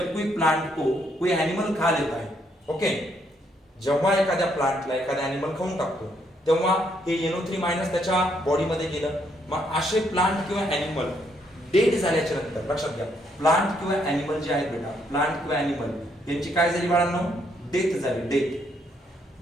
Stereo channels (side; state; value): both; normal; correlation 0.72